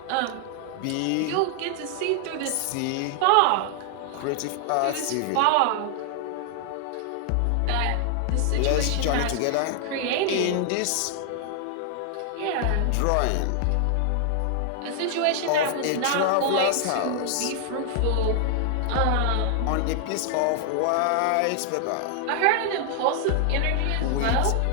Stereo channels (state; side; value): different; both; correlation 0.00